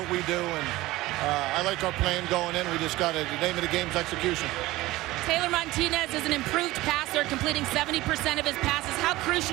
we do. And I like our plan going in. We just got to, the name of the game is execution. Taylor Martinez is an improved passer, completing 70% of his passes. How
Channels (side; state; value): left; quieter; 18.3 dB